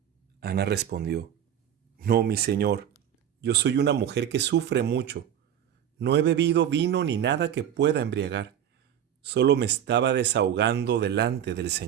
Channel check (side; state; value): left; quieter; 9.9 dB